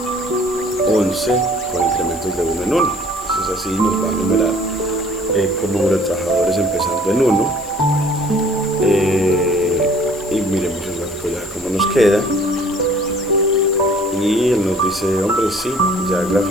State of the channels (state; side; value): noise; left; hiss, 19 dB below the sound